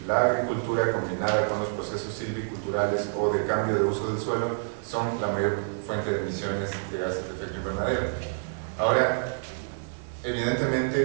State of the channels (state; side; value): silent; left; 56 dB below the other